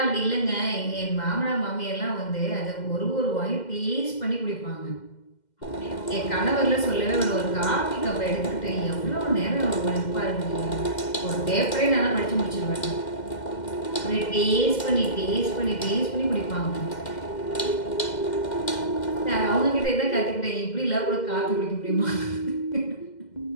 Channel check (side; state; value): right; late; 2.1 ms